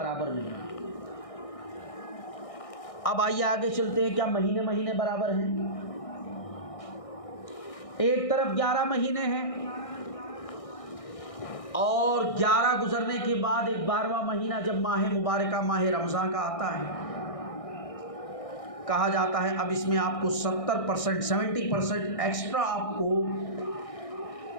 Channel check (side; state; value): right; late; 1.6 ms